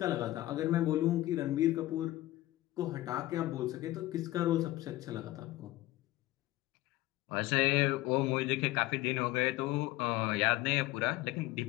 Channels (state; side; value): quieter; right; 16.8 dB